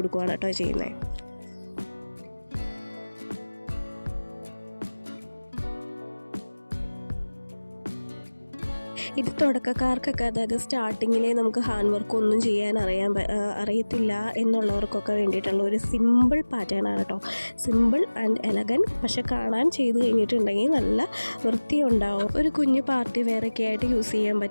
കേട്ടോ ചെയ്യുന്നത്. ഇത് തുടക്കക്കാർക്കൊക്കെ, അതായത് സ്റ്റാർട്ടിങ്ങിലെ നമുക്ക് ഹാൻഡ് വർക്ക് ഒന്നും ചെയ്യാൻ അറിയത്തില്ല എന്നുള്ളവർക്കൊക്കെ വേണ്ടിയിട്ടുള്ള ഒരു സിമ്പിൾ പാറ്റേൺ ആണ് കേട്ടോ. സിമ്പിൾ ആൻഡ് എലഗൻറ്റ്, പക്ഷെ കാണാൻ ചെയ്ത് കഴിഞ്ഞിട്ടുണ്ടെങ്കിൽ നല്ല വൃത്തി ഉണ്ടാവും. ഒരു കുഞ്ഞു പാർട്ടി വെയറൊക്കെ ആയിട്ട് യൂസ് ചെയ്യാൻ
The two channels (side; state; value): both; inverted; correlation -1.00